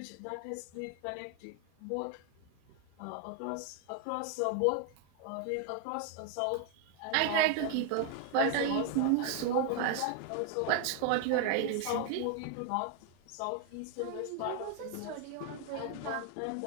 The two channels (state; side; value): different; both; correlation 0.00